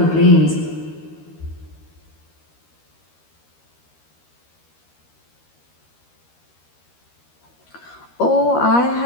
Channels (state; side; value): late; right; 13 ms